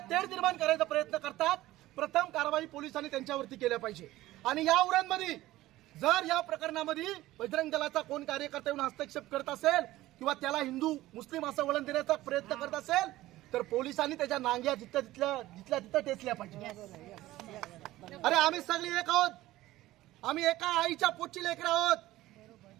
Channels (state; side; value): quieter; left; 16.5 dB